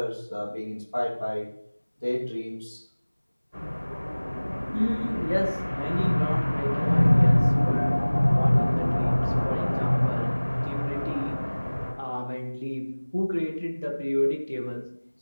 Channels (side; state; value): both; inverted; correlation -1.00